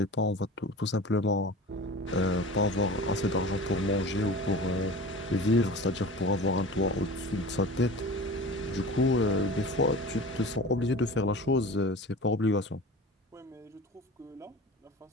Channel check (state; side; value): normal; both; correlation 0.36